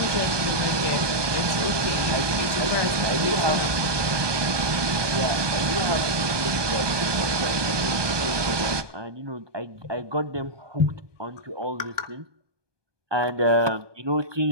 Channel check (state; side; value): late; left; 1.2 ms